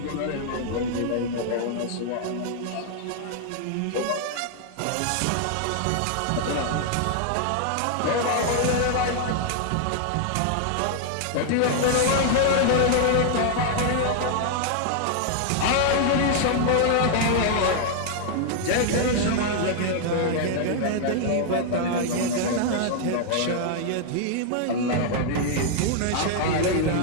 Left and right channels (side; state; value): both; different; correlation 0.00